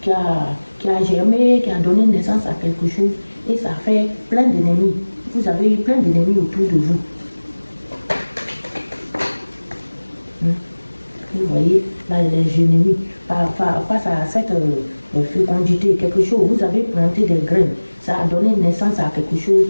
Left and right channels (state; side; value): inverted; both; correlation -1.00